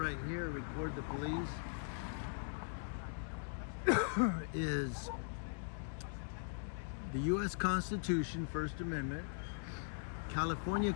here, record the police, is the U.S. Constitution, First Amendment, California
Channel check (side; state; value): right; silent; digital silence